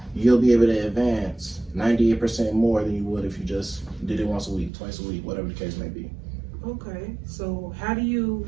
You'll be able to advance 98% more than you would if you just did it once a week, twice a week, whatever the case may be. Okay, so how do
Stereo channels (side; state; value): left; drops out; at 4.7 s